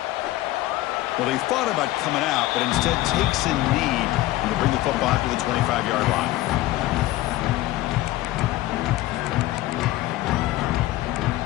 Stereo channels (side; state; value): right; quieter; 16.8 dB